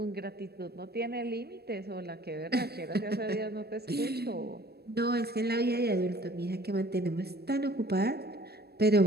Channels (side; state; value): left; late; 0.47 ms